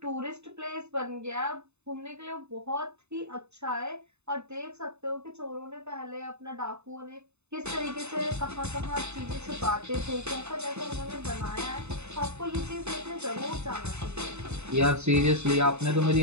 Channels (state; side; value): late; left; 0.81 ms